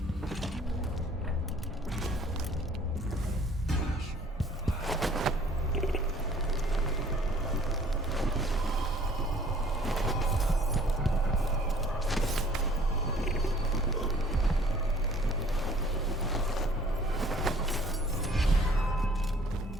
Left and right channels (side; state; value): both; normal; correlation 0.55